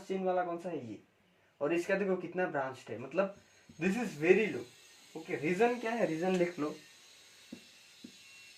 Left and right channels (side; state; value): both; identical; correlation 1.00